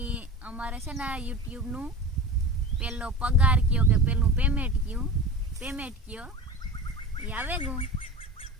અમારે છે ને યુટ્યુબનું પહેલો પગાર કયો કે પહેલું પેમેન્ટ કયો એ આવે ગયું.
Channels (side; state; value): both; normal; correlation 0.34